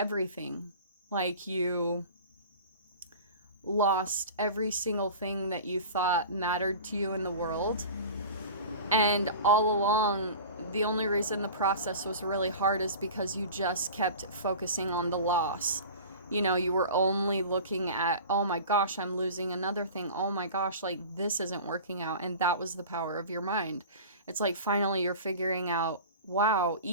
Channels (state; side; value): inverted; both; correlation -0.37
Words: Like you lost every single thing that you thought mattered to you in the world. And all along, the only reason the process was really hard is because you just kept focusing on the loss. You know, you were only looking at, oh my gosh, I'm losing another thing. Oh my gosh, like this isn't working out. And that was the power of your mind. It's like finally you're figuring out, wow,